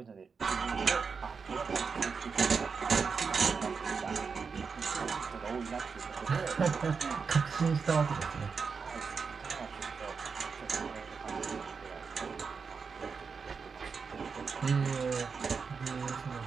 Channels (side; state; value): left; quieter; 5.4 dB